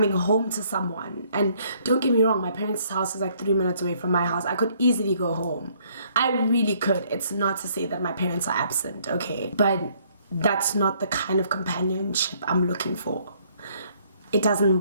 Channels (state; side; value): inverted; both; correlation -0.65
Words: home to someone. And don't get me wrong, my parents' house is like 3 minutes away from my house. I could easily go home. I really could. It's not to say that my parents are absent, okay? But that's not the kind of companionship I'm looking for. It doesn't